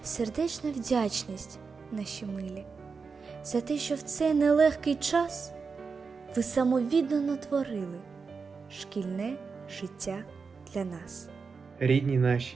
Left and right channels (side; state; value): left; quieter; 5.1 dB